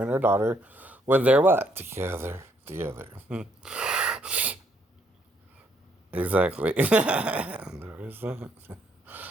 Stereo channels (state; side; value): normal; both; correlation 0.70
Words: and her daughter when they're what? Together. Exactly. There is that.